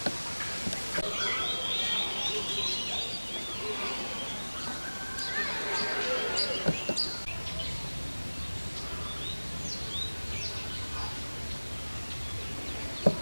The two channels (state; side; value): inverted; both; correlation -1.00